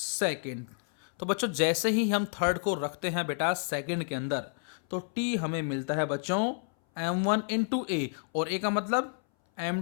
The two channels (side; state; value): right; silent; 58 dB below the other